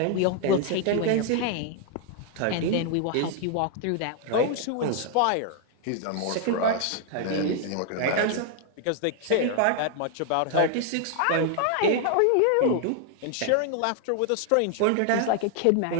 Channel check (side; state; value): both; different; correlation 0.00